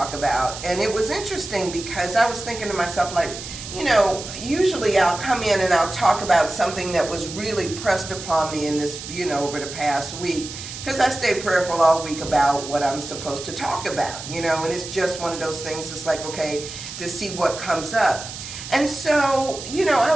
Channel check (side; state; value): right; noise; hiss, 10 dB below the sound